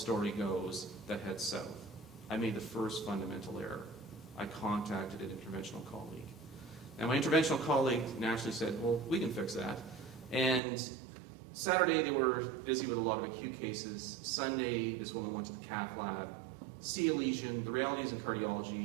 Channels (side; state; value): left; drops out; at 10.6 s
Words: goes that heads south, I made the first fundamental error. I contacted an interventional colleague. Now, my interventional colleague naturally said, well, we can fix that. And Saturday, they were busy with a lot of acute cases. Sunday, this woman went to the cath lab, see a lesion. The reality is in